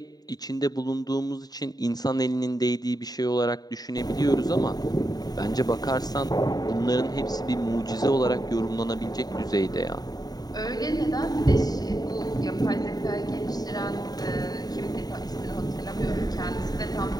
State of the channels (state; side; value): late; right; 0.19 ms